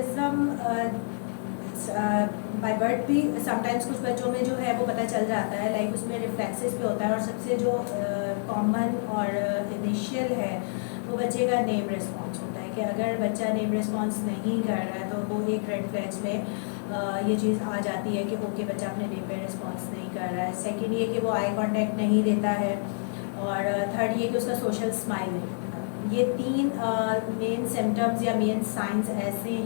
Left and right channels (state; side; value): silent; right; digital silence